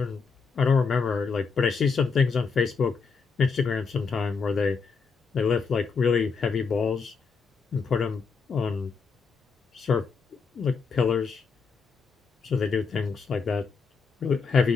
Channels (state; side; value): quieter; right; 5.2 dB